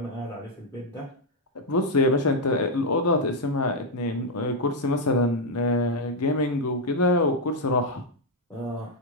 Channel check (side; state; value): both; normal; correlation 0.00